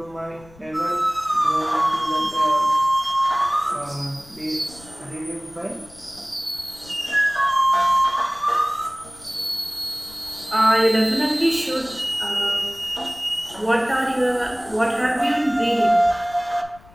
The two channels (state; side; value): noise; left; rumble, 24 dB below the sound